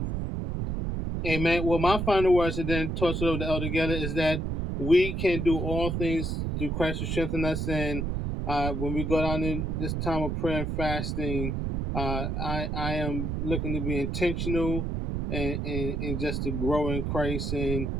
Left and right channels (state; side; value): noise; right; rumble, 1 dB below the sound